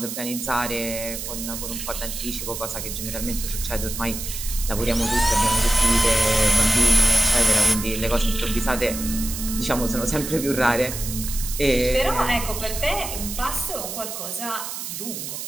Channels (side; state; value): right; noise; hiss, 7 dB below the sound